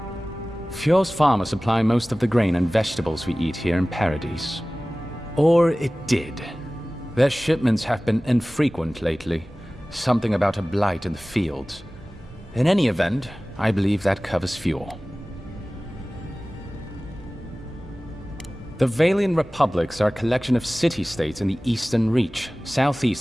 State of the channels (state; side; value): normal; both; correlation 0.98